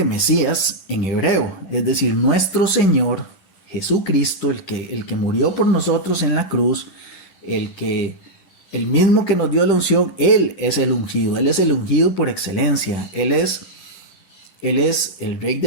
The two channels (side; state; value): right; late; 10 ms